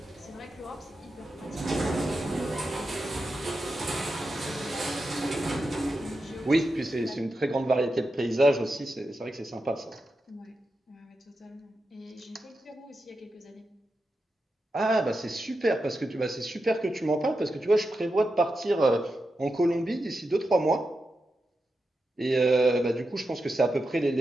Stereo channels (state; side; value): normal; both; correlation 0.89